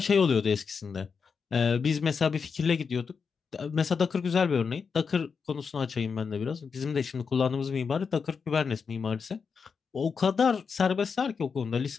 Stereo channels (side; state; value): right; quieter; 5.7 dB